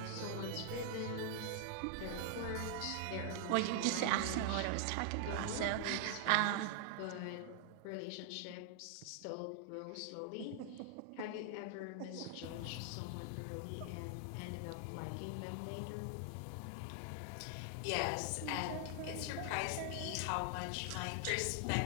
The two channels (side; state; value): both; different; correlation 0.00